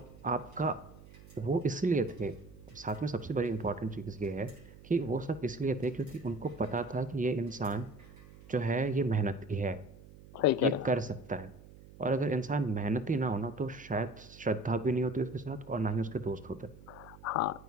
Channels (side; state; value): right; noise; hum, 20 dB below the sound